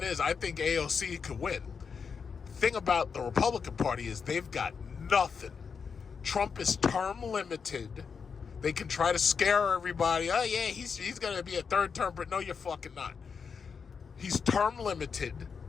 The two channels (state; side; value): quieter; right; 5.9 dB